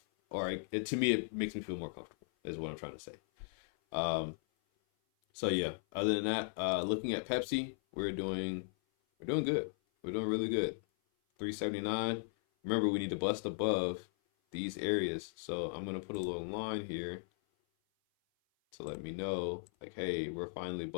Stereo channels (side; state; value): right; silent; 53 dB below the other